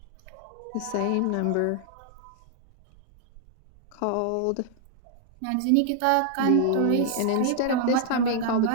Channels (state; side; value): different; both; correlation -0.01